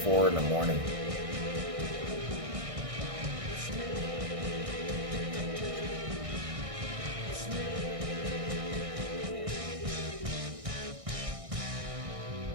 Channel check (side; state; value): left; late; 1.6 ms